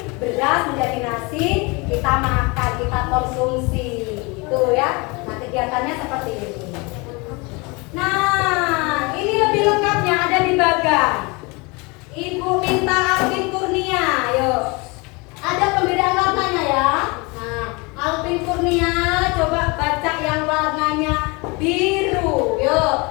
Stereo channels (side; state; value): right; quieter; 27.6 dB